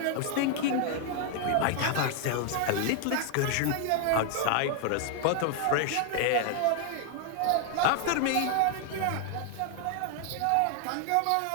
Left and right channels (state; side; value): different; both; correlation 0.00